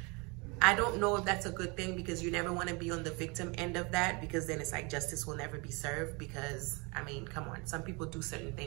I don't know if that's a good thing because you never want to be on the victim end of that, because then it's like justice will never be served because, I mean, come on, some people do certain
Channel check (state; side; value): quieter; left; 28.9 dB